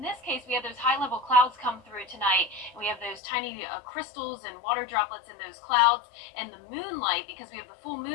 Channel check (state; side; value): drops out; right; at 3.2 s